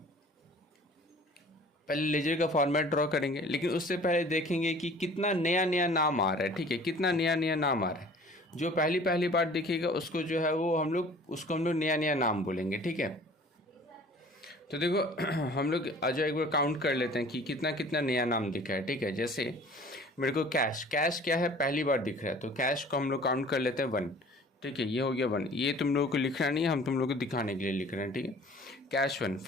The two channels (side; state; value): both; normal; correlation 0.48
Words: पहले लेजर का फॉर्मेट ड्रॉ करेंगे, लेकिन उससे पहले देखेंगे कि कितना नया नया नाम आ रहा है, ठीक है, कितना नया नया नाम आ रहा है। जो पहली बार दिखेगा उसको जो है वो हम लोग नया नया नाम बोलेंगे, ठीक है। तो देखो हम लोग आज एक बार काउंट कर लेते हैं कि कितना कितना नया नाम दिखा है, ठीक है। जैसे मेरे को कैश क्या है, पहली बार दिख रहा है, तो कैश को हम लोग काउंट कर लेते हैं 1, ठीक है, ये हो गया 1। ये तुम लोगों को लिखना नहीं है, हम तुम लोगों को दिखाने के लिए लिख रहे हैं, ठीक है। कैश 1,